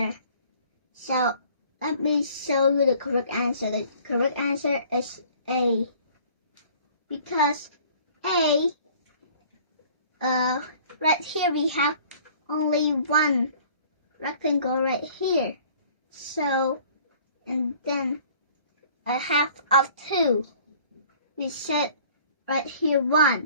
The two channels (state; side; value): inverted; both; correlation -0.52